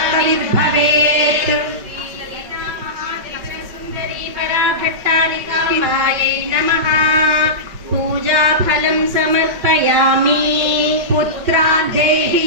సుందరీ పరాభట్టారికాంబాయై నమః. పూజాఫలం సమర్పయామి. పుత్రాన్ దేహి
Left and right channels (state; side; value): late; left; 5.4 ms